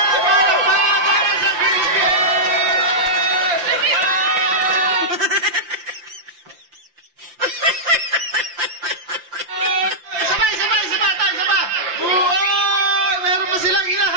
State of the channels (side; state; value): left; late; 5.7 ms